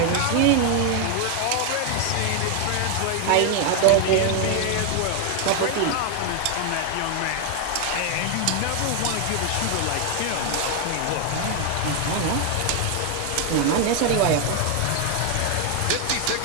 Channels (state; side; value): different; both; correlation 0.01